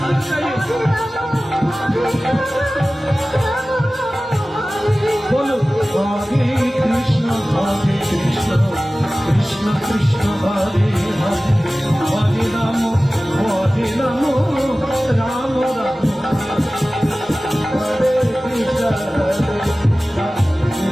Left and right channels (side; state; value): both; normal; correlation 0.97